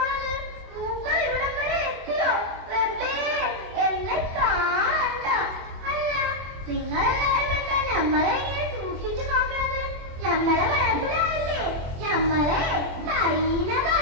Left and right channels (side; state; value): left; late; 24 ms